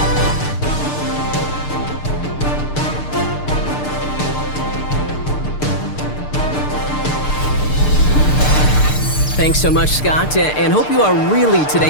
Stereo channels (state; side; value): late; right; 6.7 ms